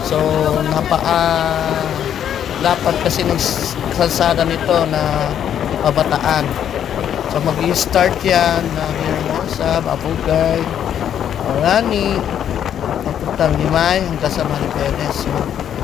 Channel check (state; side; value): quieter; right; 9.6 dB